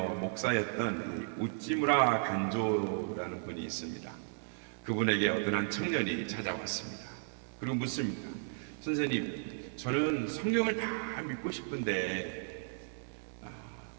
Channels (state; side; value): silent; left; 55 dB below the other